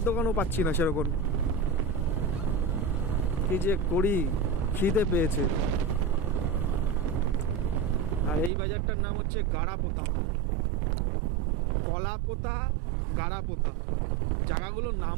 দোকানও পাচ্ছি না সেরকম। কি যে করি, খিদে পেয়েছে। আর এই বাজারটার নাম হচ্ছে গাড়াপোতা, কলাপোতা, গাড়াপোতা। জায়গাগুলোর নাম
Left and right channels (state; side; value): drops out; left; at 8.5 s